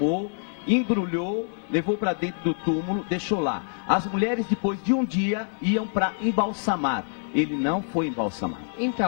embrulhou, levou para dentro do túmulo, deixou lá. As mulheres depois de um dia iam para embalsamar. Ele não foi embalsamado.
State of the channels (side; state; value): right; silent; digital silence